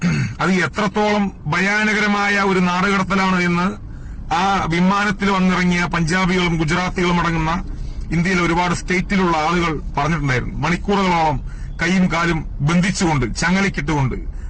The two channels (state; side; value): identical; both; correlation 1.00